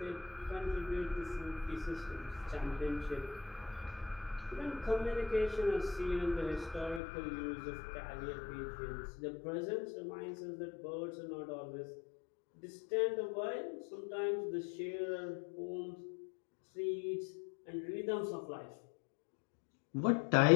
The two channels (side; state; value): right; drops out; at 7.0 s